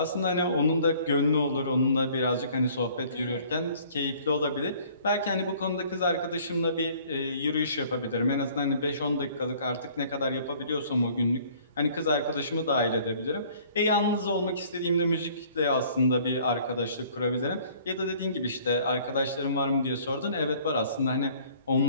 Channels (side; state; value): both; inverted; correlation -0.55